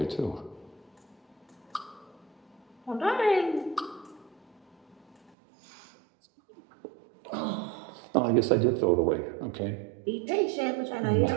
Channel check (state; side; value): drops out; left; at 5.3 s